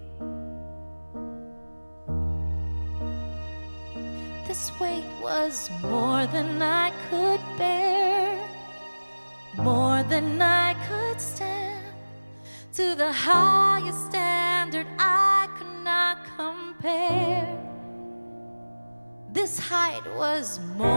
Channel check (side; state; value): both; inverted; correlation -1.00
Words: This weight was more than I could bear, more than I could stand. To the highest standard I could not compare. This height was